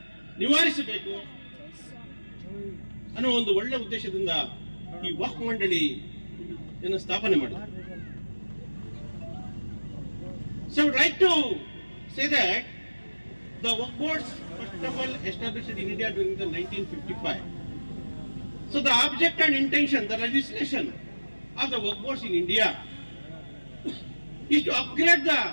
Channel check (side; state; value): both; inverted; correlation -1.00